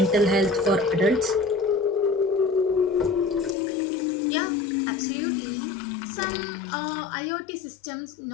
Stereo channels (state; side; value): drops out; right; at 3.6 s